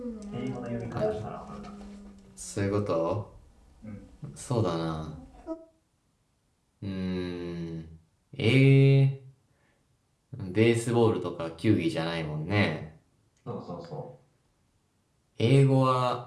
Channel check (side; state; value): both; identical; correlation 1.00